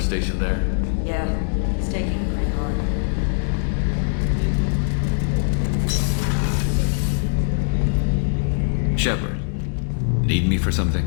there? Yeah, he's taking it pretty hard. Shepard, need me for something?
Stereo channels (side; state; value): right; silent; digital silence